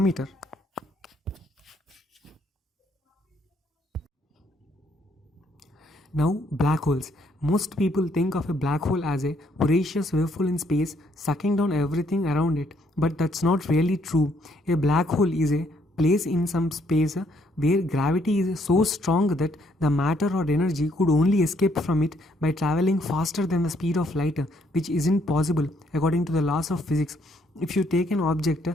Now, black holes. Most people think of a black hole as a voracious waveful in space sucking down everything around it, but that's not really true. A black hole is a place in some space where gravity is so strong that the matter or energy could only escape from it by traveling faster than the speed of light, which isn't possible according to the laws of physics. If you take an object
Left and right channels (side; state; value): both; normal; correlation 0.69